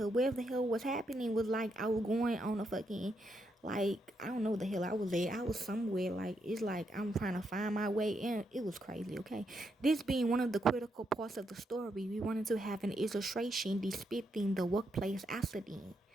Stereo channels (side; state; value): both; normal; correlation 0.80